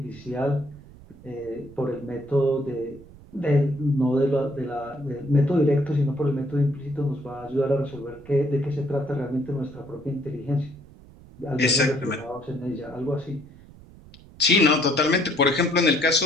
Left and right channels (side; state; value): right; noise; rumble, 21 dB below the sound